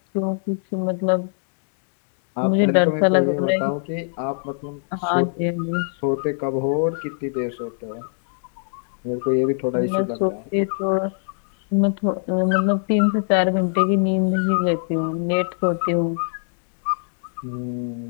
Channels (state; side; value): silent; right; digital silence